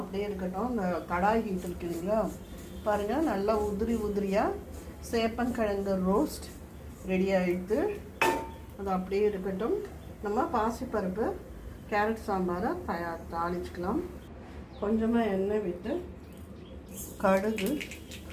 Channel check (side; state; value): both; identical; correlation 1.00